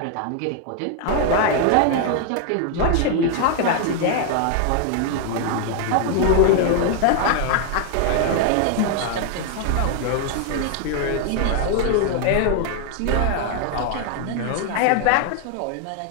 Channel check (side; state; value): both; different; correlation 0.00